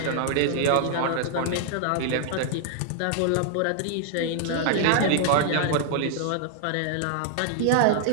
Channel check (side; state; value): both; different; correlation 0.00